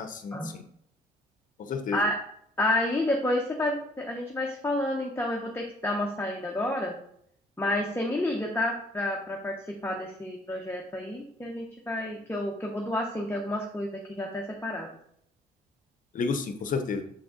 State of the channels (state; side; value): normal; both; correlation 0.61